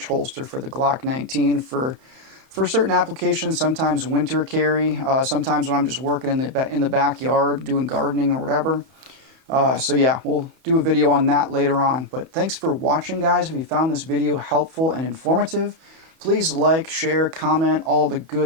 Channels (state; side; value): late; left; 31 ms